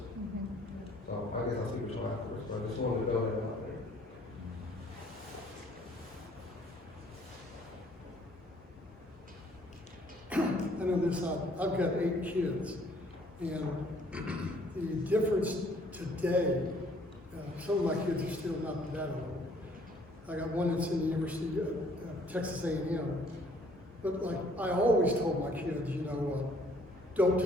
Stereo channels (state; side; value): normal; both; correlation 0.61